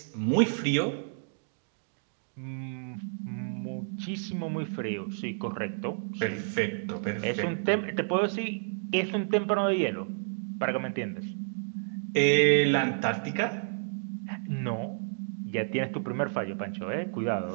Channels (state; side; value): silent; left; digital silence